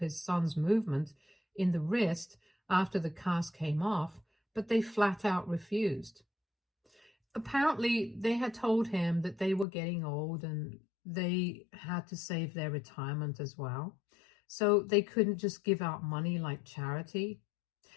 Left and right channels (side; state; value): right; drops out; at 9.7 s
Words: son's movement in the wrist after the cast came off, but they flat out refused. Apparently, they had told him that they were getting old and they had to save their retirement as well, so they couldn't just give out money like charity.